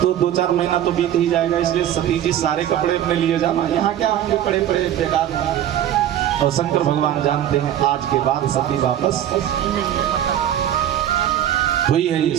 तो 2-4 महीना तो बीत ही जाएगा। इसलिए सती जी सारे कपड़े अपने लिए जाना, यहाँ क्या होंगे पड़े पड़े बेकार होंगे। और शंकर भगवान जानते हैं आज के बाद सती वापस हुई है।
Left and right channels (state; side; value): quieter; left; 11.2 dB